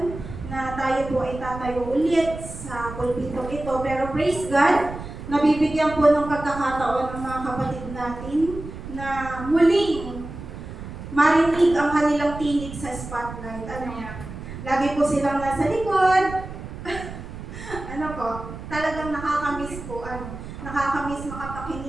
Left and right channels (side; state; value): right; noise; rumble, 11 dB below the sound